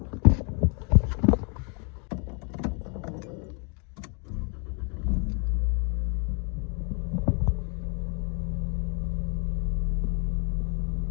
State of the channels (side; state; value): right; quieter; 35.4 dB